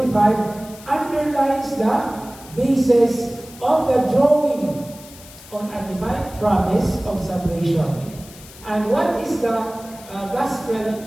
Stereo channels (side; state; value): left; noise; hiss, 19 dB below the sound